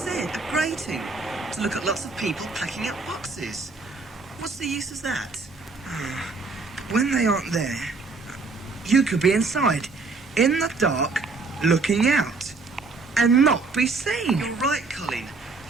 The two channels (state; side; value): quieter; left; 3.9 dB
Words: a grating. To look at lots of people packing up boxes. What's the use of that? But when they aren't there, you could be inside, in the dark, looking out, and not be seen. You're right, Colin.